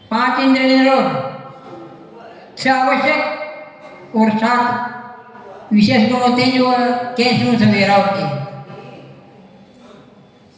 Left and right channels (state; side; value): identical; both; correlation 1.00